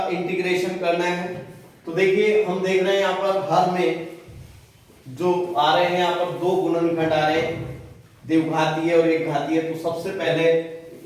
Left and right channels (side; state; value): both; identical; correlation 1.00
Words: इंटीग्रेशन करना है। तो देखिए हम देख रहे हैं यहां पर हर में जो आ रहे हैं, यहां पर 2 गुणनखंड आ रहे हैं, द्विघातीय और एक घातीय। तो सबसे पहले